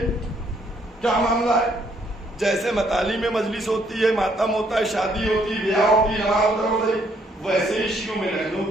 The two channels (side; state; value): both; normal; correlation 0.69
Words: کیا معاملہ ہے. جیسے مطالعے میں مجلس ہوتی ہے, ماتم ہوتا ہے, شادی ہوتی ہے, بیاہ ہوتی ہے, نماز ہوتا ہے, ویسے ہی شیعوں میں لکھنؤ